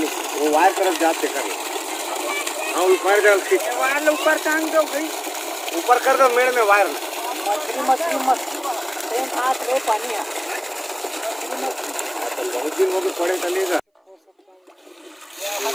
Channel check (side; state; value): both; identical; correlation 1.00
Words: वो वायर तरफ जाते कर। हाँ ऊपर कर ठीक वायर ऊपर टांग दो भाई, ऊपर कर दो मेड़ में वायर। मछली हाथ में पानी है बहुत दिन हो गए पड़े चलेगा।